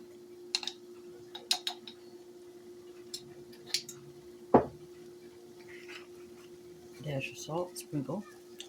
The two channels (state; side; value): identical; both; correlation 1.00